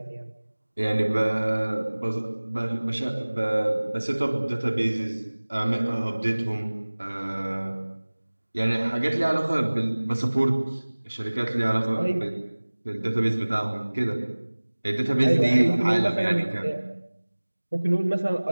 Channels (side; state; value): both; inverted; correlation -1.00